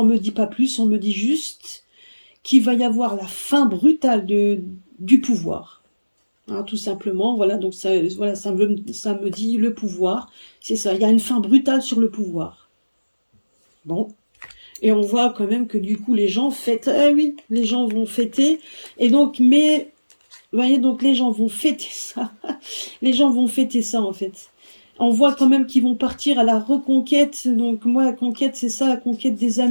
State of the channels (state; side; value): inverted; both; correlation -1.00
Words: me dit pas plus, on me dit juste qu'il va y avoir la fin brutale du pouvoir, hein, tout simplement. Voilà, donc ça, voilà, ça me dit le pouvoir. C'est ça, il y a une fin brutale sur le pouvoir. Bon, et on voit quand même que du coup, les gens fêtent. Ah oui, les gens vont fêter. Et donc, mais, vous voyez, donc les gens vont fêter ça. Les gens vont fêter ça, en fait. On voit quand même qu'ils vont partir à la reconquête. Donc moi, la conquête, c'est ça, la conquête des